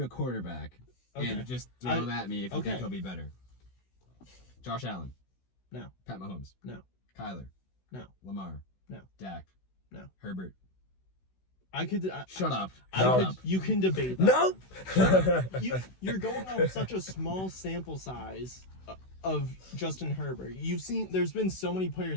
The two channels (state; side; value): late; right; 16 ms